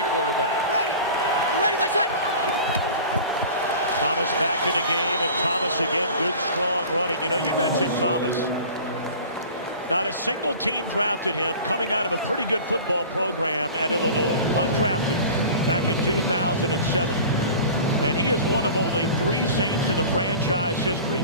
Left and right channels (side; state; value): both; inverted; correlation -0.40